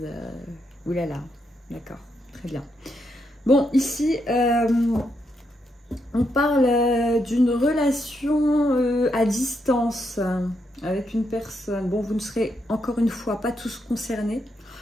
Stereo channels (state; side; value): normal; both; correlation 0.80